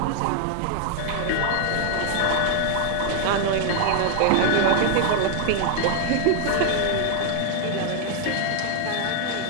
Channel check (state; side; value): different; both; correlation 0.00